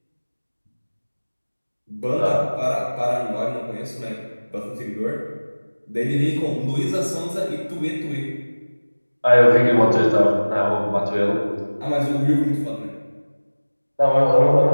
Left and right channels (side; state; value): both; inverted; correlation -1.00